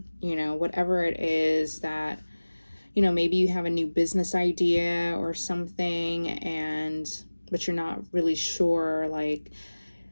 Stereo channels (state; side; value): inverted; both; correlation -1.00